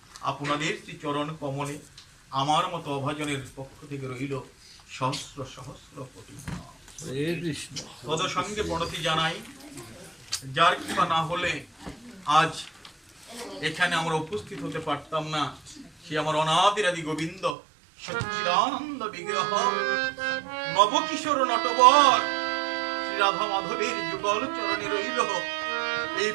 আপনাদের চরণ কমলে আমার মতো অভাজনের পক্ষ থেকে রইল সহস্র সহস্র কোটি তদ সঙ্গে প্রণতি জানাই। যার কৃপা না হলে আজ এখানে আমরা উপস্থিত হতে পারতাম না। সে আমার অনাদিরাদি গোবিন্দ সচ্চিদানন্দ বিগ্রহ নবকিশোর নটবর শ্রী রাধা মাধবের যুগল চরণে রইল এই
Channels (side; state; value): left; drops out; at 17.6 s